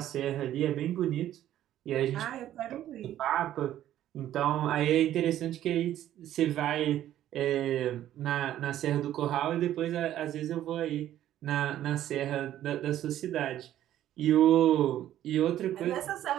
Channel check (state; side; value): quieter; left; 12.3 dB